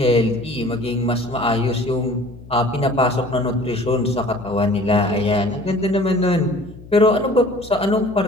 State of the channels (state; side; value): noise; left; hum, 19 dB below the sound